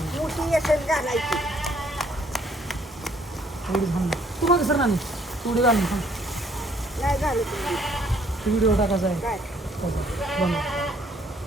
मोठी येसन घालायची तुम्हाला सर नाही थोडी घालून नाही घालत व्हिडिओ टाकायचा आहे काय बंद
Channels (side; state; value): both; normal; correlation 0.64